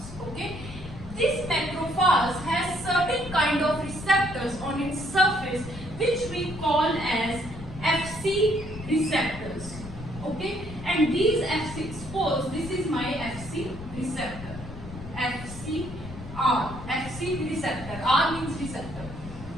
okay. This macrophage has certain kind of receptors on its surface which we call as Fc receptors, okay, and these Fc, suppose this is my Fc receptor, Fc receptor, R means receptor.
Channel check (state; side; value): noise; left; rumble, 12 dB below the sound